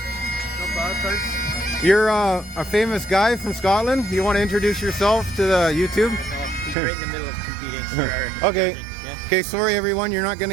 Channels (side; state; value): left; drops out; at 6.8 s